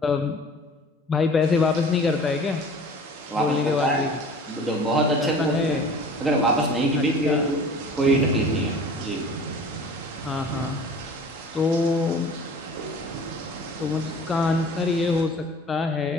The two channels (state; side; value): normal; both; correlation 0.44